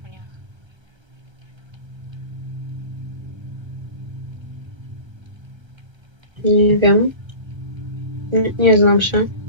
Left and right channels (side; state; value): left; late; 1.3 ms